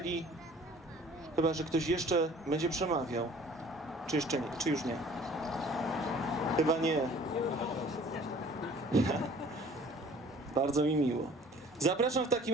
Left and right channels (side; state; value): both; normal; correlation 0.51